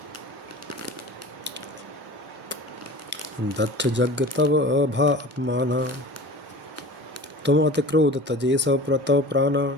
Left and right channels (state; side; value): normal; both; correlation 0.38